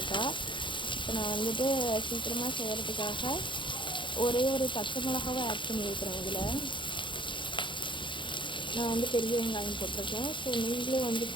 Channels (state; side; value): late; right; 0.23 ms